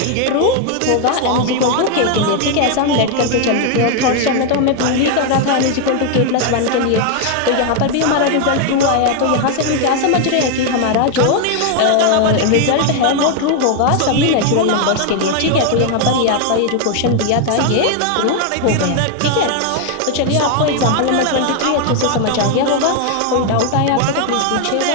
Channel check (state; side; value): different; both; correlation 0.00